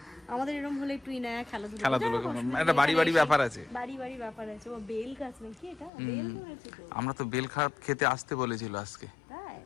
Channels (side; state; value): right; drops out; at 5.9 s